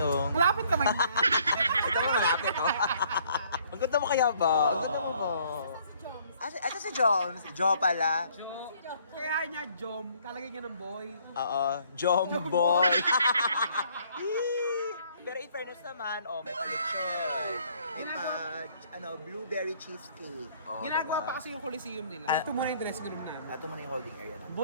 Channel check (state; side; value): inverted; both; correlation -0.62